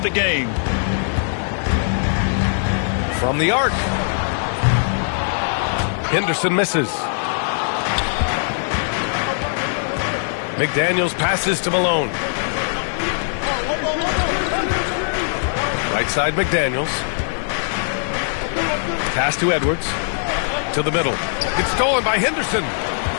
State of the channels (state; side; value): silent; right; 60 dB below the other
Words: the game. From the arc. Henderson misses. McDaniels passes to Malone. Right side McDaniels. Pass to Edwards. To the middle. It's stolen by Henderson.